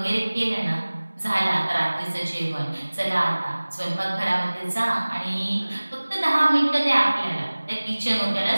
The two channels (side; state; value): both; inverted; correlation -1.00